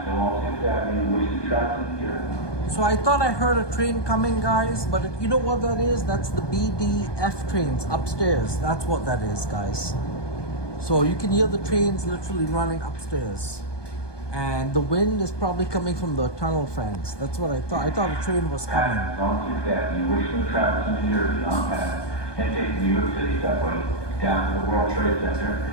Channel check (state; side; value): late; right; 1.2 ms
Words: along 6th Avenue, wishing travels to New Jersey. So I thought I heard a train coming, guys, but you know what that is? That's the BDF trains upstairs. That's what that is, guys. So you can hear the trains literally running upstairs. And the wind is probably coming from the tunnel fans. That's what I thought. I thought a train was coming. Passes on 6th Avenue, wishing travels to New Jersey on path, and take the New York City subway down to the World Trade Center